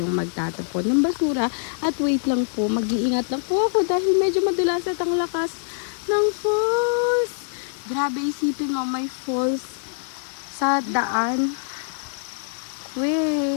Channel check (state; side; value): silent; right; 55 dB below the other